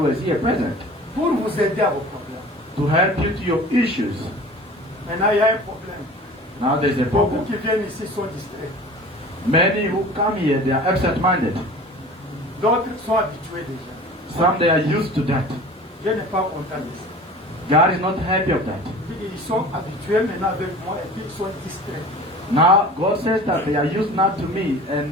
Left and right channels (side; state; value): both; normal; correlation 0.41